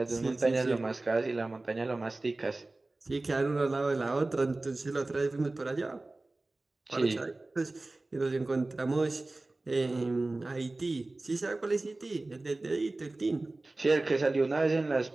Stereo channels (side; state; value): left; quieter; 3.0 dB